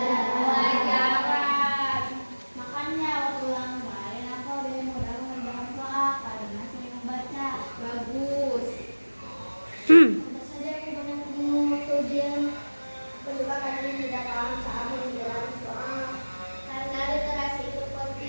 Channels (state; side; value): inverted; both; correlation -1.00